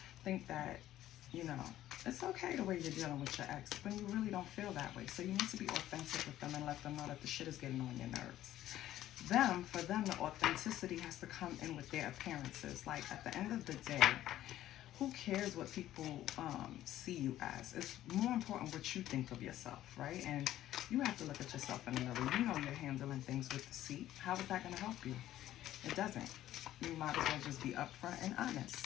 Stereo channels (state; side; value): quieter; right; 13.3 dB